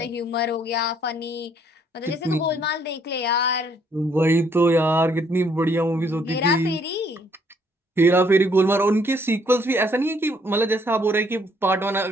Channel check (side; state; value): both; normal; correlation 0.66